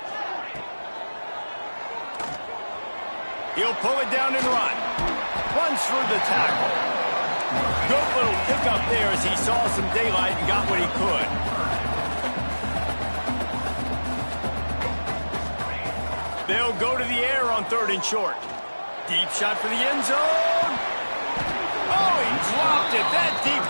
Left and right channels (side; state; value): both; inverted; correlation -1.00